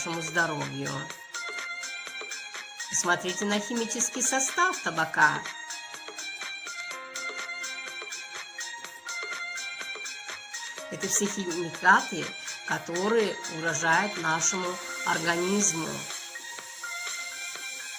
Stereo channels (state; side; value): identical; both; correlation 1.00